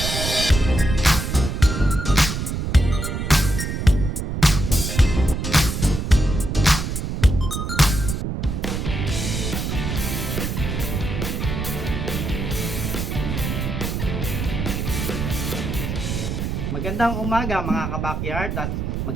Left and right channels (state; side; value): noise; right; rumble, 3 dB below the sound